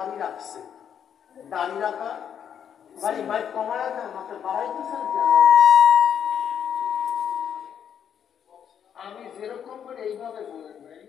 রাখছে, দাড়ি রাখা ভাই ভাই কমায় না মাত্র বাড়াইতেছেন। আমি যেরকম করে এইভাবে বলেন ভাই,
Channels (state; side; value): quieter; right; 8.5 dB